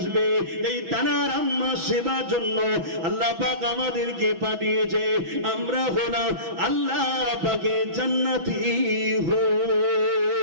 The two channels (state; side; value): late; left; 6.1 ms